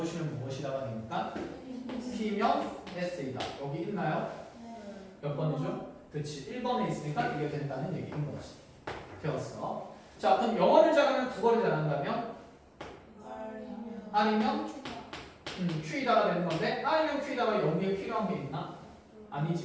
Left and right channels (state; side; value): identical; both; correlation 1.00